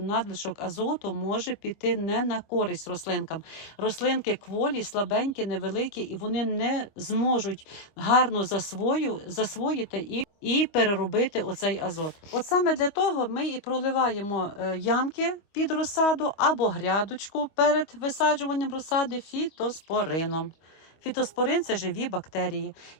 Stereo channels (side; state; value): right; late; 25 ms